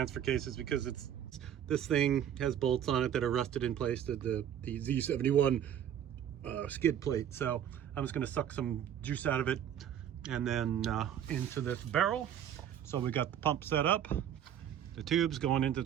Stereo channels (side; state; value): left; quieter; 9.9 dB